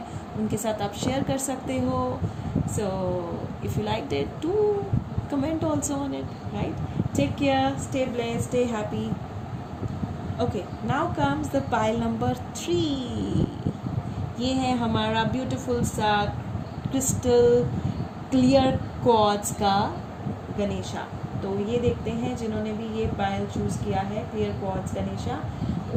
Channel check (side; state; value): both; identical; correlation 1.00